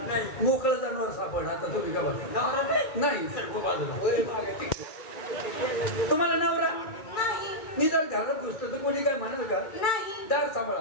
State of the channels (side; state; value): right; late; 2.3 ms